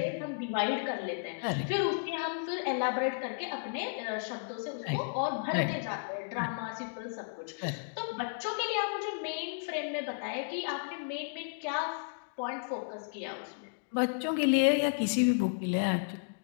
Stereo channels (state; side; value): silent; right; digital silence